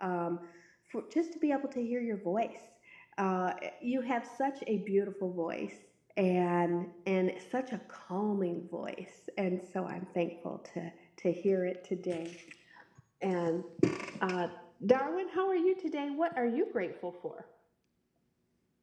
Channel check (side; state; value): both; identical; correlation 1.00